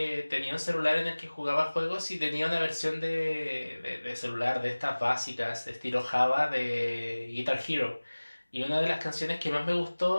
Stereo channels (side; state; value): both; inverted; correlation -1.00